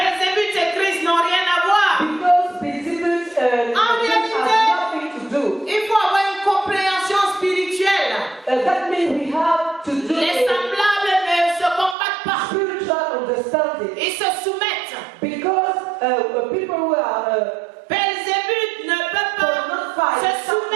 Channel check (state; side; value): drops out; left; at 12.0 s